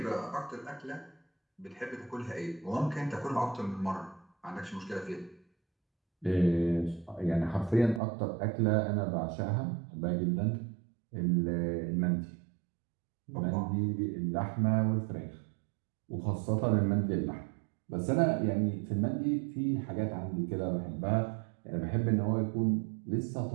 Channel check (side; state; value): left; drops out; at 8.0 s